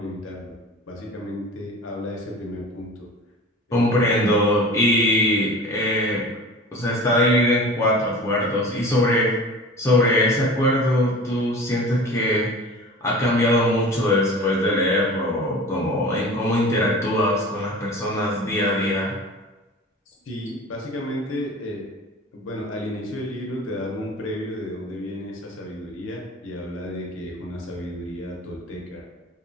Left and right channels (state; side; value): normal; both; correlation 0.38